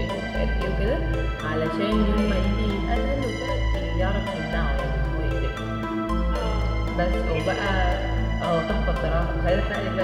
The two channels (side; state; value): both; identical; correlation 1.00